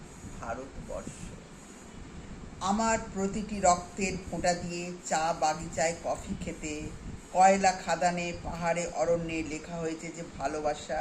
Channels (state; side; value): identical; both; correlation 1.00